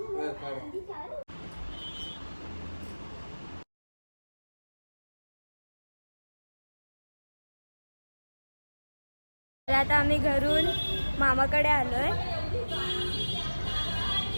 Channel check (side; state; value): both; inverted; correlation -1.00